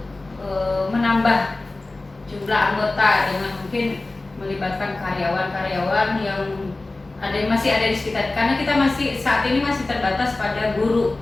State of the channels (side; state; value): right; quieter; 3.1 dB